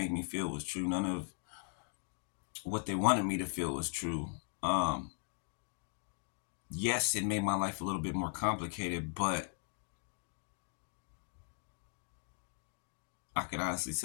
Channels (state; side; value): silent; right; 52 dB below the other